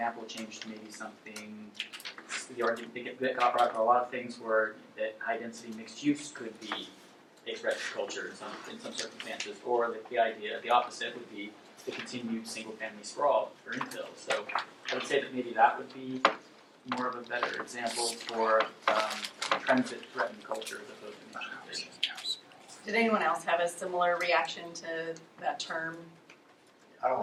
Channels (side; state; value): both; identical; correlation 1.00